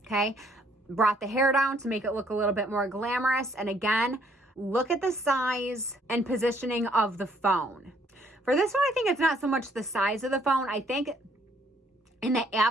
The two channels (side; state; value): both; normal; correlation 0.65